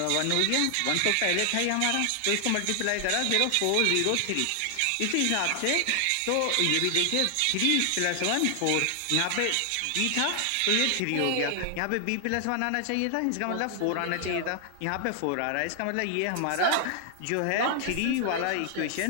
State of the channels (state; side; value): different; both; correlation 0.00